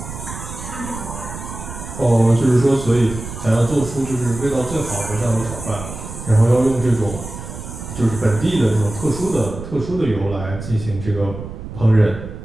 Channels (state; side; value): noise; right; rumble, 10 dB below the sound